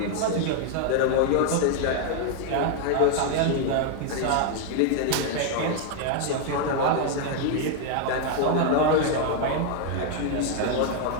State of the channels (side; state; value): both; different; correlation 0.00